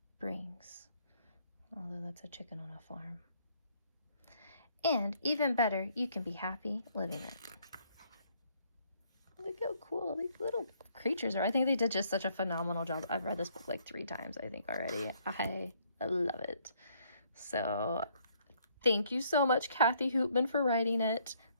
brings. Although that's a chicken on a farm. And even better, you can be happy living it. Look how cool these little creatures are. I think they did just such a phenomenal job. I've read this book like 3 times, I think, already. I love it. So thank you so much, Kathy Hoopmann, for writing it.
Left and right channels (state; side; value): inverted; both; correlation -0.67